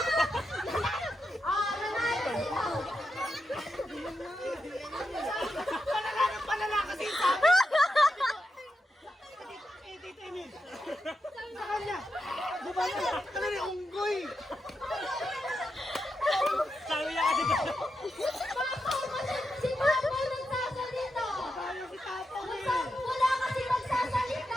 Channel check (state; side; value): normal; both; correlation 0.87